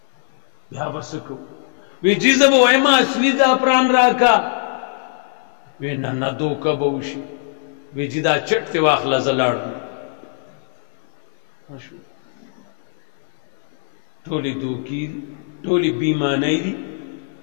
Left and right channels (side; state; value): right; silent; digital silence